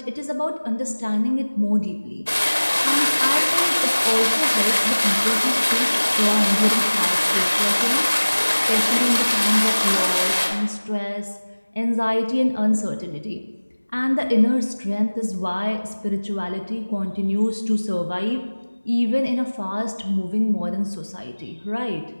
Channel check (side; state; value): both; inverted; correlation -1.00